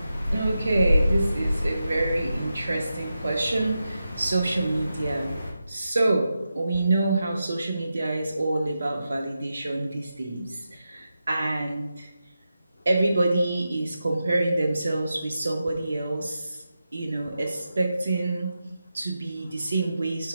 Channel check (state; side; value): inverted; both; correlation -0.90